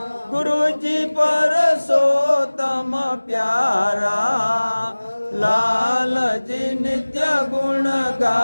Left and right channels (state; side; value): inverted; both; correlation -1.00